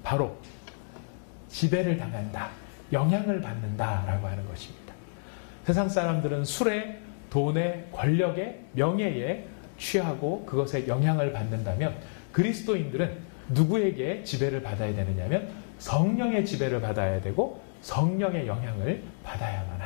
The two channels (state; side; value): silent; right; digital silence